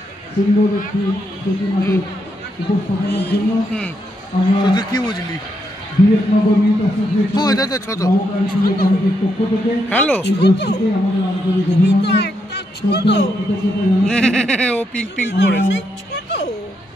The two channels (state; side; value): normal; both; correlation 0.80